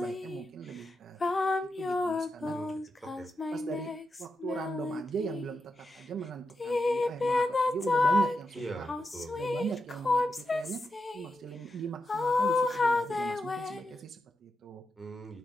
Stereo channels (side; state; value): both; normal; correlation 0.87